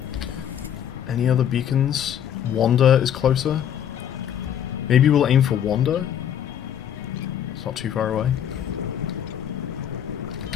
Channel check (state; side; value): quieter; right; 9.6 dB